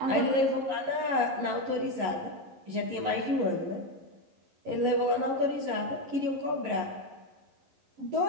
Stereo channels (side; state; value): left; late; 11 ms